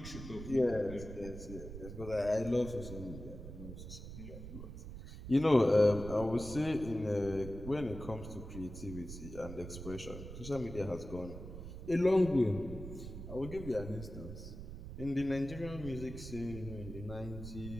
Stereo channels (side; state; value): right; noise; rumble, 10 dB below the sound